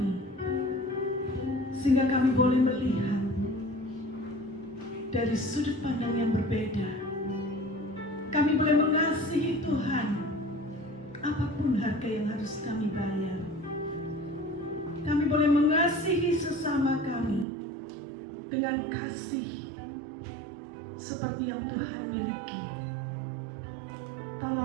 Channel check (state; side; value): drops out; left; at 17.4 s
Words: sehingga kami boleh melihat dari sudut pandang yang berbeda. Kami boleh mengasihi Tuhan apapun harga yang harus kami bayar. Kami boleh mengasihi sesama kami dengan kasih seperti yang Tuhan miliki.